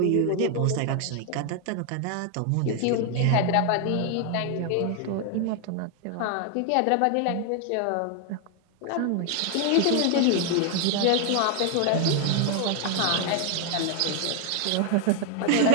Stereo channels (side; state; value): both; different; correlation 0.00